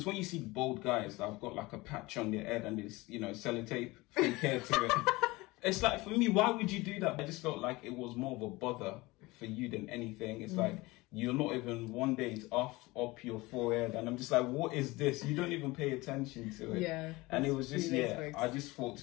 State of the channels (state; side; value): quieter; right; 21.7 dB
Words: when you see bald guys that have got like a patch on their head and it's, sellotape fake hair to it, it's like, for me, why would you do that? I just felt like it was more of a bother for you than anything. It's like, you're not even, one day it's up your forehead, and I'm just like, what is this? You don't even pay attention to it. Yeah. And it was just, I just thought